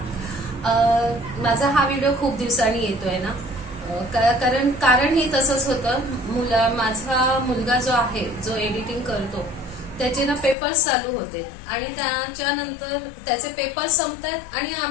माझा हा व्हिडिओ खूप दिवसांनी येतोय ना, कारण ही तसंच होतं. माझा मुलगा जो आहे, जो एडिटिंग करतो, त्याचे ना पेपर्स चालू होते आणि त्याच्यानंतर त्याचे पेपर्स संपतात आणि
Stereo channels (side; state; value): right; drops out; at 10.6 s